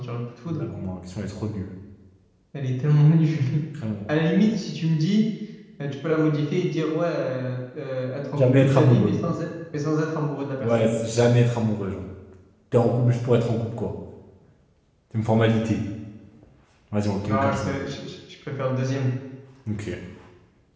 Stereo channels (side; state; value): both; identical; correlation 1.00